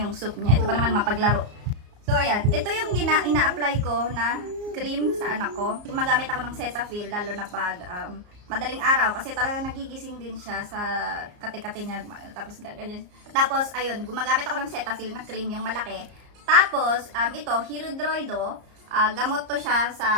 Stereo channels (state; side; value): late; left; 34 ms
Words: yung soup niya. Ito pa naman mapaglaro. So ayan, ito yung ina-apply ko na cream sa anak ko. Gumagamit ako ng Cetaphil lalo na pag madaling araw kasi talagang nagigising din siya sa kate-kate niya, tapos ganyan. Tapos ayun, gumagamit ako ng Cetaphil na cream, yung malaki. Tapos ito, Hirudoido, gamot to siya